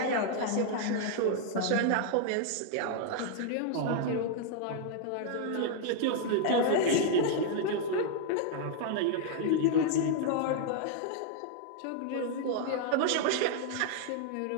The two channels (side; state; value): both; different; correlation 0.00